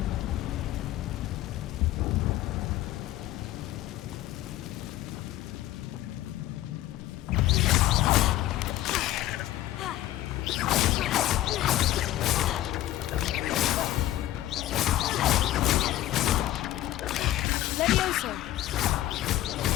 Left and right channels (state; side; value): quieter; right; 14.4 dB